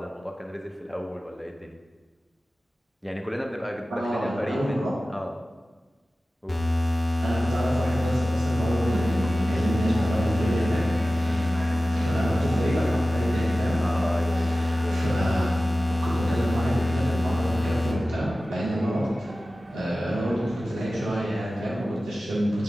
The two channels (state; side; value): normal; both; correlation 0.96